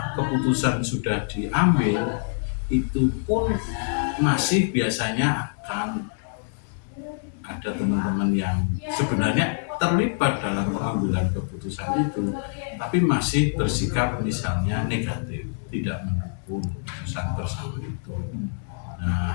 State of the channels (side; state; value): right; silent; digital silence